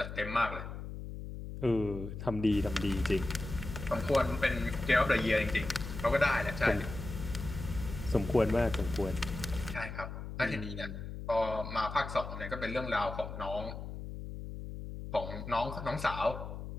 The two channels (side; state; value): left; noise; hum, 8 dB below the sound